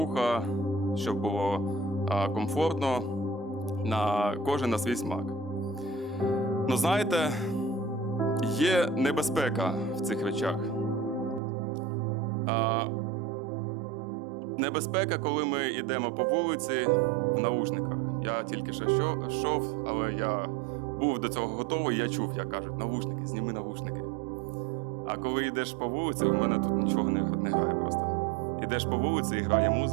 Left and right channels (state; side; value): drops out; left; at 11.4 s